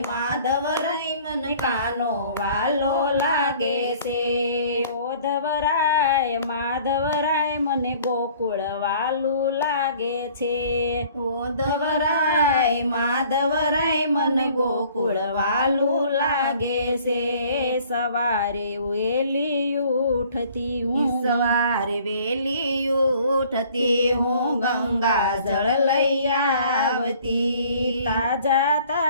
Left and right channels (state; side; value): inverted; both; correlation -0.54